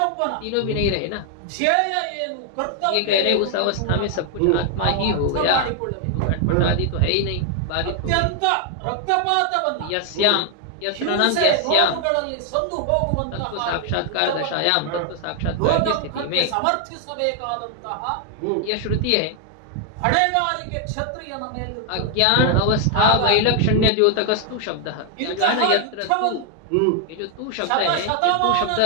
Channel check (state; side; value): different; both; correlation 0.00